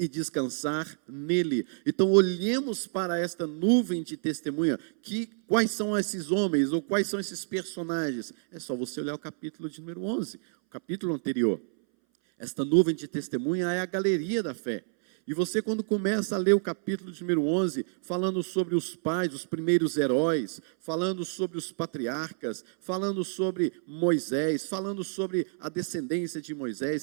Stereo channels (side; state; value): left; silent; 59 dB below the other